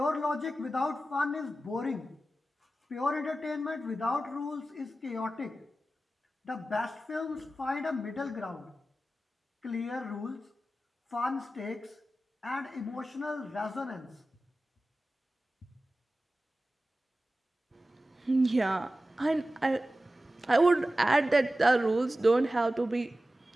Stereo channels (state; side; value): normal; both; correlation 0.94